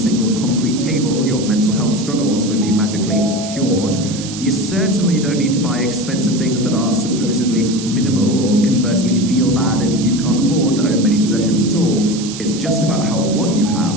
concrete table, your mental health struggles would be magically cured. You certainly don't need to buy expensive things that are supposedly minimal, or conversely feel bad if you can't afford to own many possessions at all. It's just about how what you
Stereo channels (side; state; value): right; noise; hiss, 11 dB below the sound